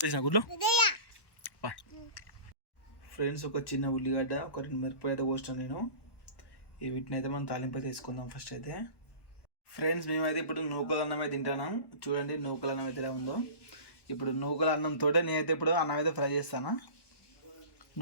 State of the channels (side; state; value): right; late; 1.2 ms